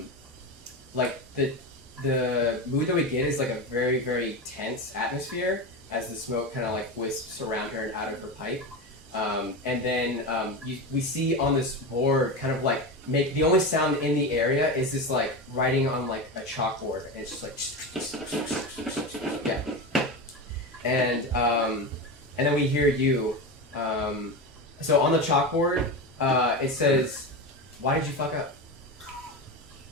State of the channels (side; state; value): both; normal; correlation 0.20